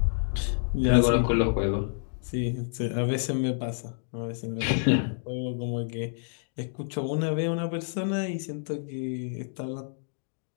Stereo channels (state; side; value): silent; right; digital silence